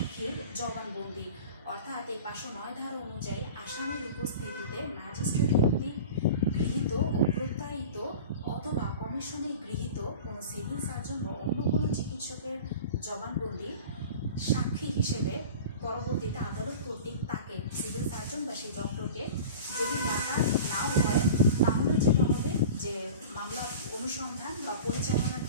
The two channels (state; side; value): inverted; both; correlation -0.37